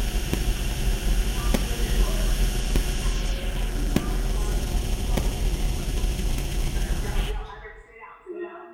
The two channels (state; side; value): identical; both; correlation 1.00